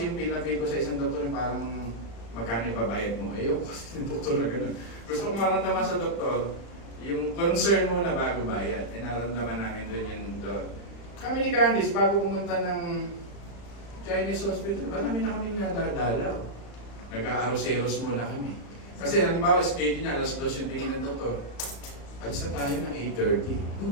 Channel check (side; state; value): right; late; 35 ms